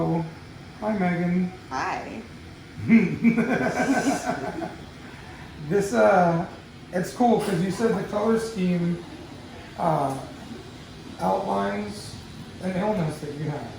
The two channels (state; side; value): identical; both; correlation 1.00